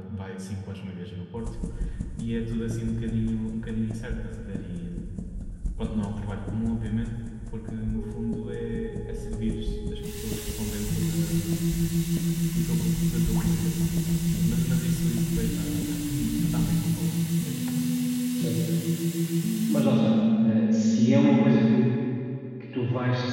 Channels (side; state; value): both; identical; correlation 1.00